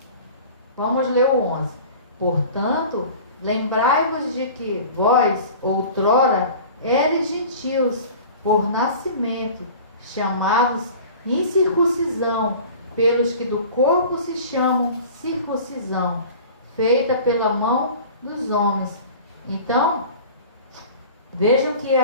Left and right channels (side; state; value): both; inverted; correlation -0.41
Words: Vamos ler o 11. Portanto, lembrai-vos de que vós, outrora, eres gentios, por nascimento, chamados incircuncisão, pelos que do corpo se chamam circuncisão, feita pela mão dos homens. Então, vejam que